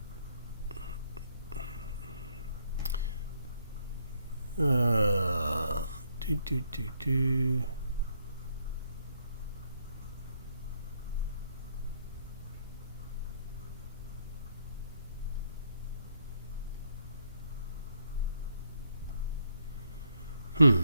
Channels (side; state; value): both; inverted; correlation -0.72